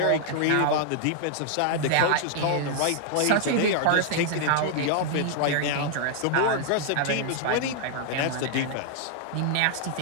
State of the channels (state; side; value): different; both; correlation 0.00